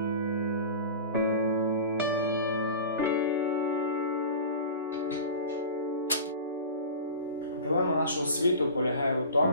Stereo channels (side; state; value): both; inverted; correlation -0.35